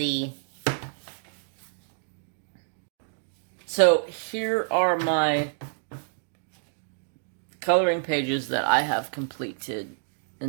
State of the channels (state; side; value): silent; left; digital silence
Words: So here are my coloring pages that I have completed